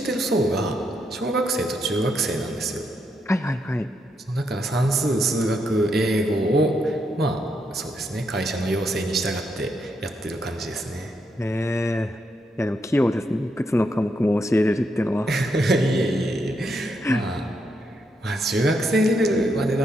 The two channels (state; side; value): normal; both; correlation 0.79